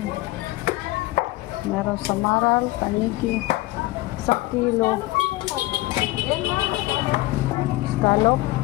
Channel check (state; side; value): quieter; right; 19.3 dB